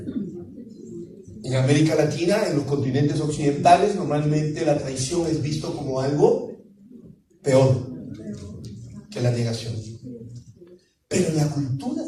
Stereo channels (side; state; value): both; identical; correlation 1.00